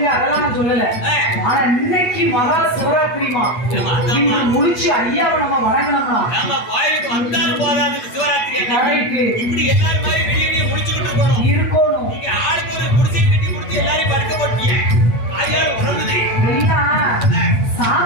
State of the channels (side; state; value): right; late; 8.6 ms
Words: அதெல்லாம் நான் சொல்லல. ஆனா இன்னைக்கு மகா சிவராத்திரிமா, இன்று முடிச்சு ஐயாவை நம்ம வணங்கணும்னா நாம கோயிலுக்கு வந்தாலும் போதாது. சிவராத்திரி கரெக்ட் இப்படி எல்லாரும் மாதிரி வெளியே முடிச்சுக்கிட்டு இருக்கணும். இருக்கணும். நீங்க ஆளுக்கு ஒரு குடிசை கட்டி கொடுத்து எல்லாரையும் படுக்க போட்டீங்க. ஆயாரும் உறங்குது. இல்லையா